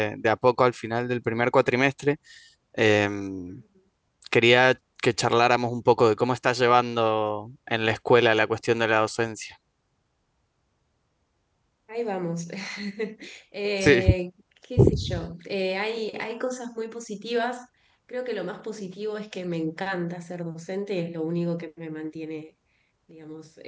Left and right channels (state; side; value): identical; both; correlation 1.00